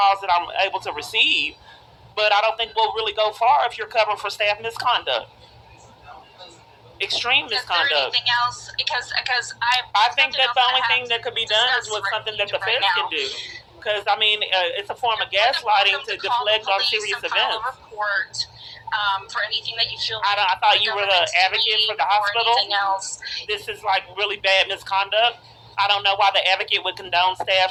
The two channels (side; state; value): both; identical; correlation 1.00